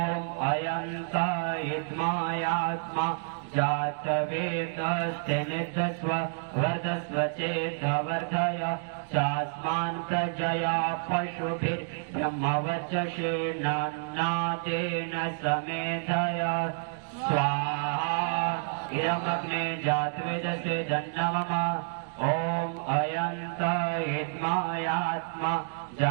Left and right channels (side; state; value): left; silent; digital silence